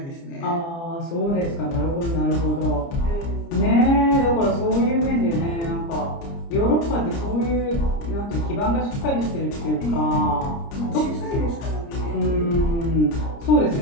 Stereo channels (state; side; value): late; right; 30 ms